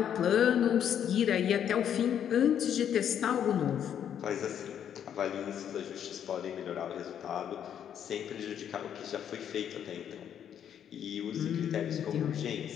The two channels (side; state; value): right; quieter; 9.2 dB